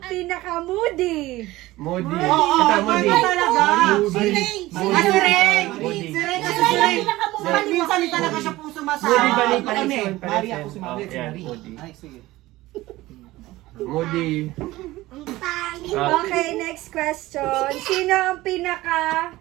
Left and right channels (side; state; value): left; quieter; 17.9 dB